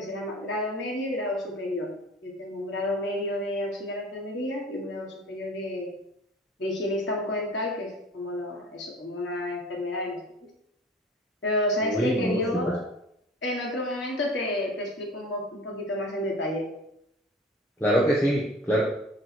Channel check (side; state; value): both; normal; correlation 0.42